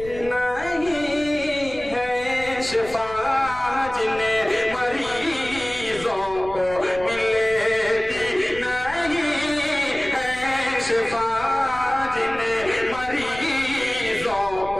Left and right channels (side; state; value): left; noise; rumble, 16 dB below the sound